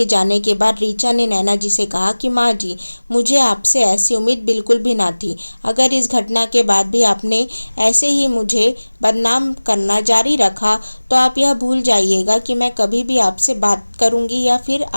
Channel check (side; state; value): both; inverted; correlation -1.00